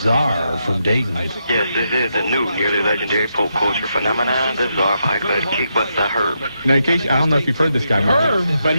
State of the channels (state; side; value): inverted; both; correlation -0.82